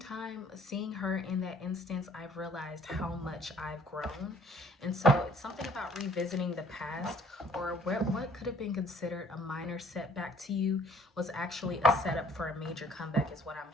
seeing her in that instance, I've realized how much I've grown. And so it's something about revisiting the past, or what could have been considered a minor setback to you was actually a setup for a major comeback, is what I'm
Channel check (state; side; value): normal; both; correlation 0.57